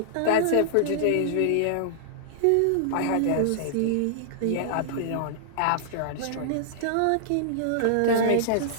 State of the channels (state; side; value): different; both; correlation -0.01